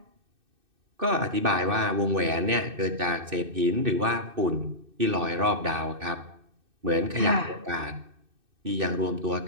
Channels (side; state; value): left; late; 2.6 ms